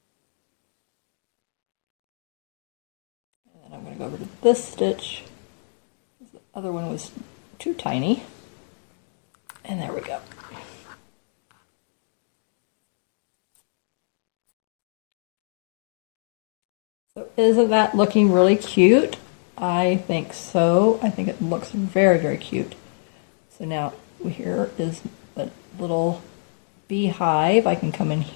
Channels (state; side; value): silent; right; 61 dB below the other